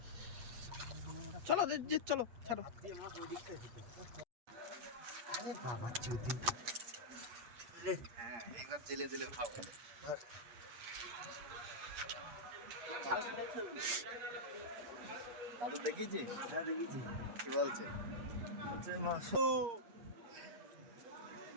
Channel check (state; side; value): late; left; 8.5 ms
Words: চলো চলো ছাড়ো। আরে বাবা চুদি রে, হ্যাঁ একবার জেলে জেলে খাবো। দাদু দেখিয়েছি? হ্যাঁ দেখিয়েছি। কি বলছে?